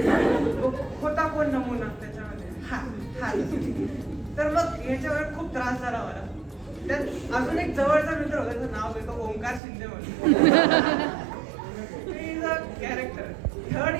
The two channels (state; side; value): drops out; left; at 9.6 s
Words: होता कोण नमुना त्याच्यामध्ये हा. तर मग याच्यावर खूप त्रास झाला मला. त्यात अजून एक जवळचा मित्र होता, त्याचं नाव घेतो ओंकार शिंदे म्हणून. कॅरेक्टर 3rd